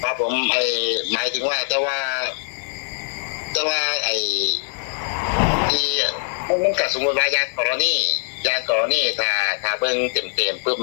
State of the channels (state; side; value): silent; right; digital silence